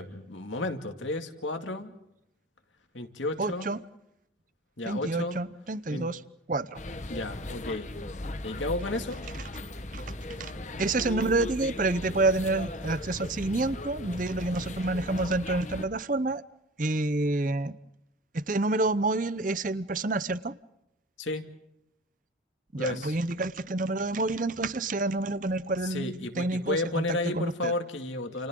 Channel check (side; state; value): both; normal; correlation 0.36